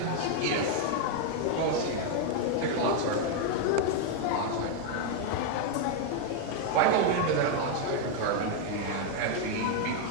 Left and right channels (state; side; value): different; both; correlation 0.00